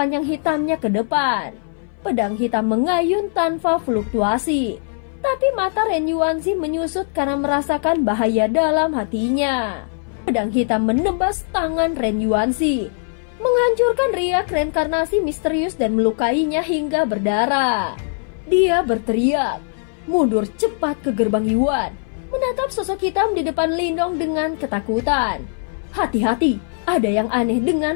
hitamnya ke depan. Pedang hitam mengayun tanpa fluktuasi, tapi mata Ren Yuanzi menyusut karena merasakan bahaya dalam hatinya. Pedang hitam menebas tangan Ren Yuanzi, menghancurkan riak reinkarnasi misterius dan melukainya hingga berdarah. Dia berteriak, mundur cepat ke gerbang Yuan, menatap sosok hitam di depan Lindong dengan ketakutan. Hati-hati, ada yang aneh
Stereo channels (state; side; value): silent; right; 62 dB below the other